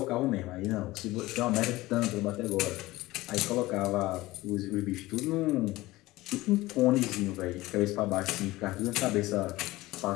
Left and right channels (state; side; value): quieter; right; 18.7 dB